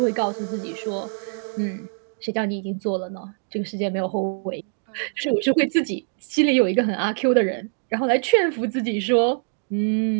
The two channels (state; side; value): silent; left; digital silence